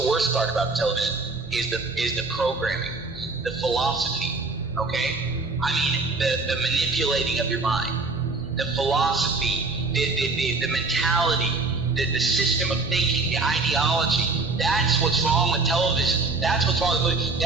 worst part about television is the programming, the philosophy, okay? I mean, the manipulating of your mind, the philosophy, the mentality, the system of thinking, the ideology. That's what's wrong with television. That's what's wrong with movies.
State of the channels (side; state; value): left; quieter; 3.6 dB